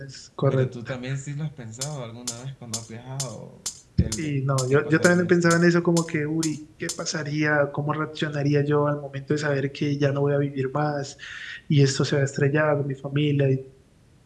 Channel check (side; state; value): both; identical; correlation 1.00